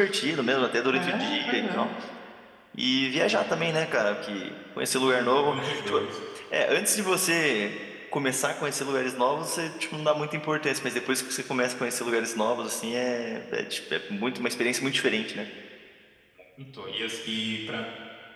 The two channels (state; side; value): identical; both; correlation 1.00